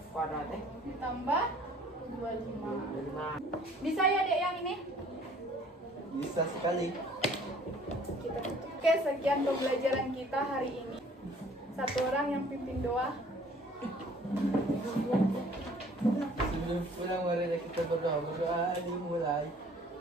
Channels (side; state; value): both; normal; correlation 0.55